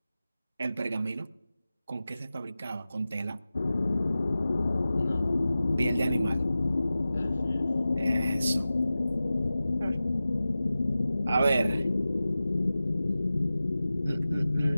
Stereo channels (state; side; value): inverted; both; correlation -0.95